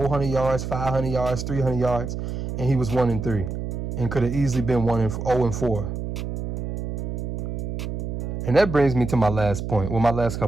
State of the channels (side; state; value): right; noise; hum, 4 dB below the sound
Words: yards, 500 yards, 300 yards, and he was 1-3 and could have easily been 0-4. And that brings me to my last point. Well, my last